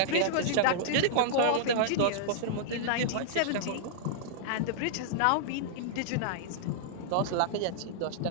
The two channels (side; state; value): both; different; correlation -0.02